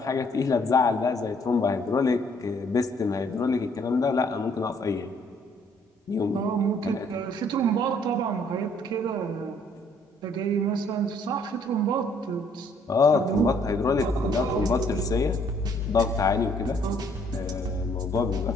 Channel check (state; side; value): normal; both; correlation 0.64